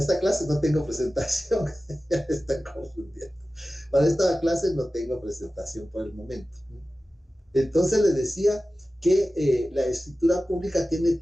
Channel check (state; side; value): normal; both; correlation 0.95